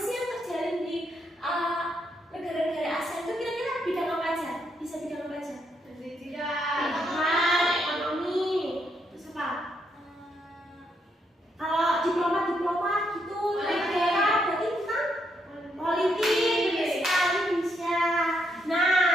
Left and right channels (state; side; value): normal; both; correlation 0.77